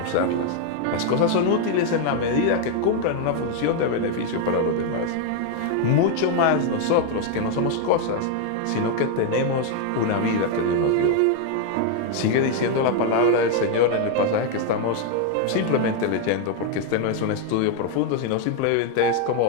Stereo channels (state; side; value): different; both; correlation 0.01